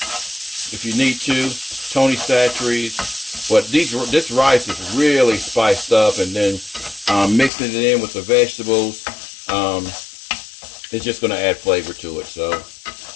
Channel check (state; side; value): drops out; right; at 7.5 s